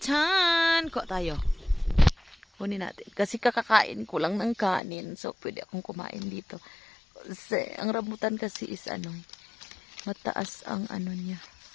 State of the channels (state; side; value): drops out; right; at 4.8 s